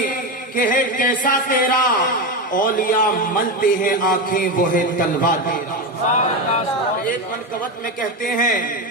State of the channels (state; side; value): normal; both; correlation 0.15